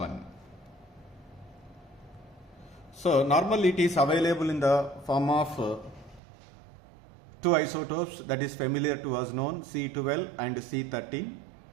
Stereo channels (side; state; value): left; drops out; at 6.2 s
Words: So normally it is available in the form of two isotopes that is familiar to us known, C12 and C13.